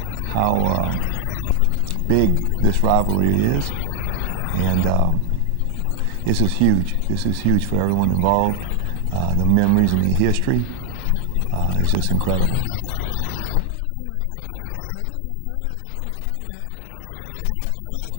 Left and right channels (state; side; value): different; both; correlation 0.00